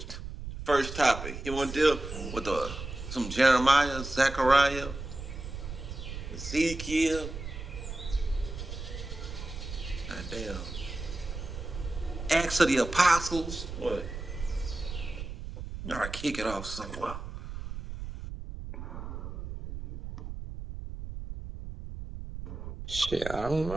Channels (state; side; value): noise; right; rumble, 8 dB below the sound